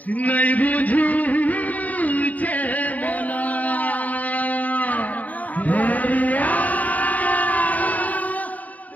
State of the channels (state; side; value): late; right; 0.074 ms